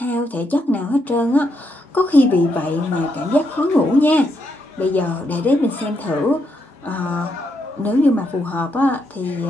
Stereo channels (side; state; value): both; normal; correlation 0.79